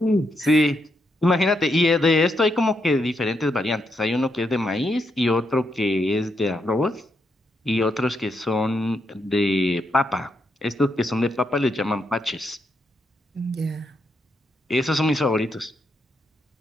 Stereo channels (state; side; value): normal; both; correlation 0.80